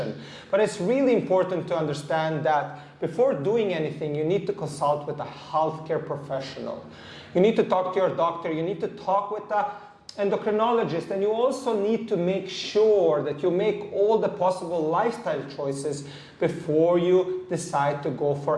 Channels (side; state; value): both; identical; correlation 1.00